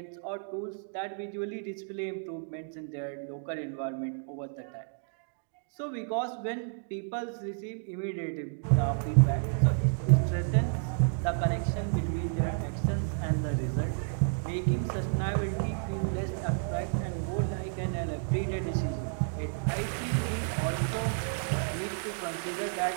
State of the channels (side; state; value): left; silent; digital silence